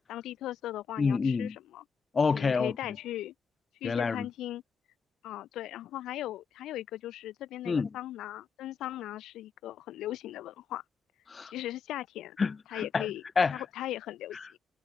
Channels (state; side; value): quieter; right; 5.9 dB